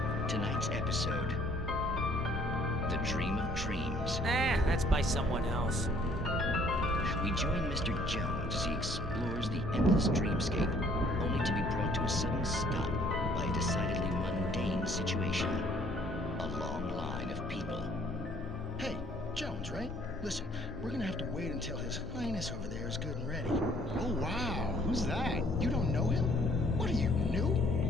Tonight's episode, The Dream of Dreams. That's by someone else. We join Mr. Jones as he explores the endless dreamscape, only to be brought to a sudden stop by a decidedly mundane situation. A long line of people. Hey, Jones, right? Listen, we're gonna have to wait until His Highness over there is good and ready. Oh, wow. Who's that? You don't know him? What are you, new?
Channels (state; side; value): normal; both; correlation 0.60